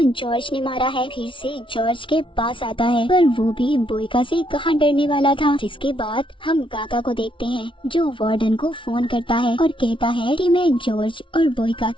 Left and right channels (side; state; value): right; late; 0.25 ms